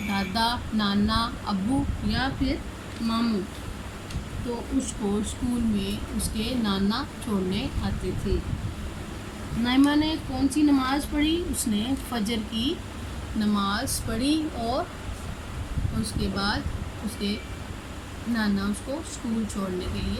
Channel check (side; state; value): both; identical; correlation 1.00